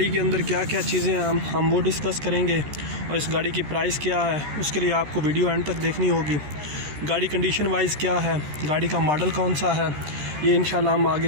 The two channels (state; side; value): late; left; 13 ms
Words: के अंदर क्या क्या चीज़ें हैं हम वो डिस्कस करेंगे, और इस गाड़ी की प्राइस क्या है उसके लिए आपको वीडियो एंड तक देखनी होगी। गाड़ी कंडीशन वाइज क्या है, गाड़ी का मॉडल कौन सा है, ये इंशाल्लाह हम आगे